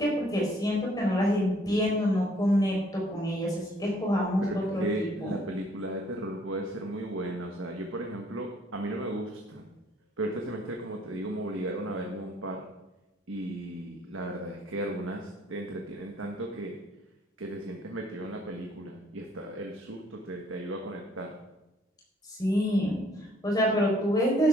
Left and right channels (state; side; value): normal; both; correlation 0.62